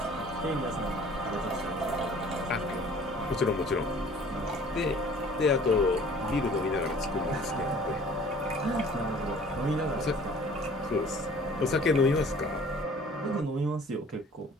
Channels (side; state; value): both; normal; correlation 0.51